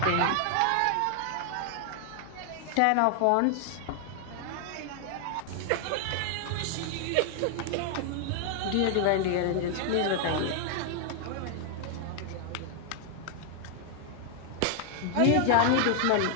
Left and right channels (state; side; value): different; both; correlation 0.00